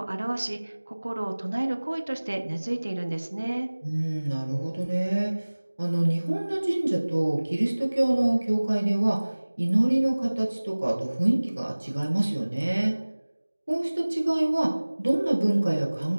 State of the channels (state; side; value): inverted; both; correlation -1.00